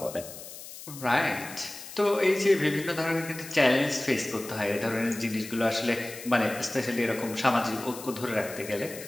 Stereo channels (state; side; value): noise; left; hiss, 13 dB below the sound